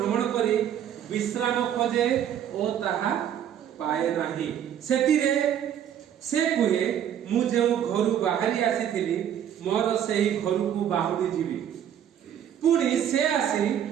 କରି विश्राम खोजे ओ ताहा पाए नाही सेतिरे से कुहे मु जो घर बाहरी आसीथिली मोर सही घर को बाहुरी जीवी पुणी से आसी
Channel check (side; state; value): left; quieter; 9.8 dB